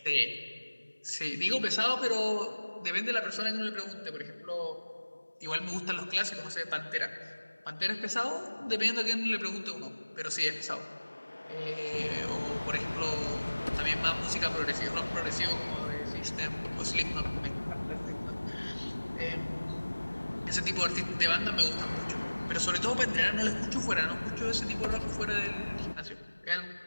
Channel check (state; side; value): inverted; both; correlation -1.00